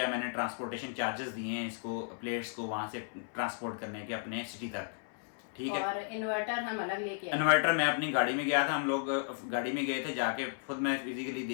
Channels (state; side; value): silent; right; 55 dB below the other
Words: मैंने ट्रांसपोर्टेशन चार्जेस दिए हैं इसको, प्लेट्स को वहाँ से ट्रांसपोर्ट करने के अपने सिटी तक, ठीक है। और इन्वर्टर हम अलग लेके आए। इन्वर्टर मैं अपनी गाड़ी में गया था, हम लोग गाड़ी में गए थे, जाके खुद मैं फिजिकली